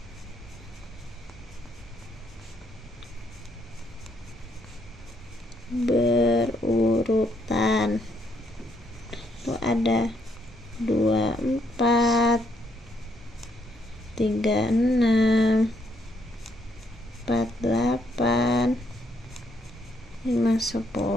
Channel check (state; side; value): normal; both; correlation 0.73